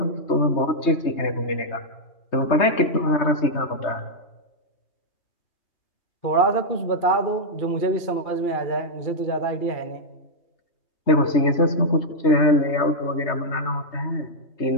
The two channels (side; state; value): right; late; 3.2 ms